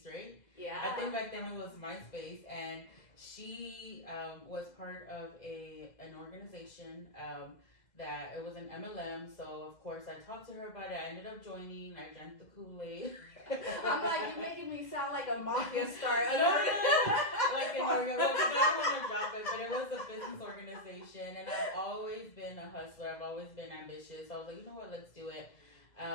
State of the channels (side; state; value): right; late; 2.0 ms